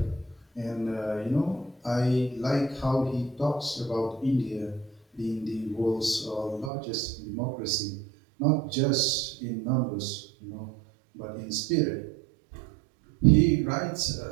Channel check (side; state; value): left; drops out; at 6.7 s